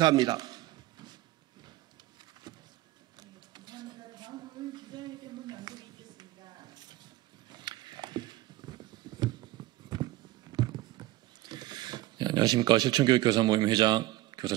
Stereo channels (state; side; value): quieter; left; 17.2 dB